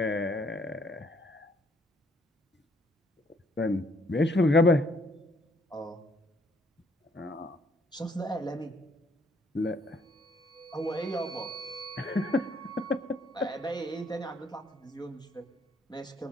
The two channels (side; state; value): both; normal; correlation 0.67